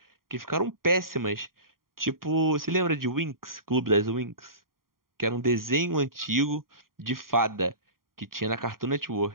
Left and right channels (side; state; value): left; late; 0.91 ms